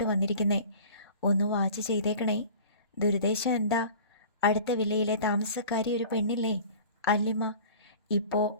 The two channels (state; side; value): inverted; both; correlation -0.42